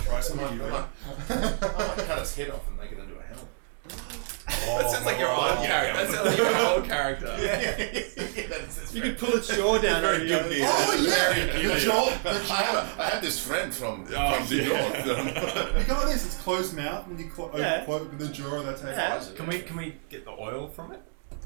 some I of you. might cut its head off and make it into a helmet. That sounds like your old character. That sounds like your old character. You could pull its jaw down. Very and Gibney. Oh, yeah! The jaw! I have this friend from the north. You got this, it's closed mouth when you Yeah. open the jaw, that's how Yeah. you Can we get the oil from it?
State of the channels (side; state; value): left; silent; 59 dB below the other